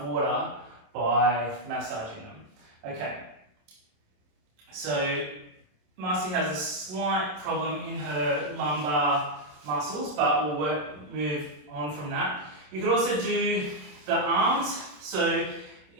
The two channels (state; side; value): late; left; 27 ms